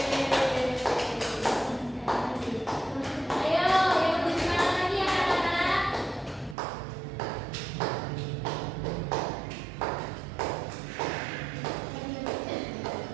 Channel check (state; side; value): drops out; left; at 6.6 s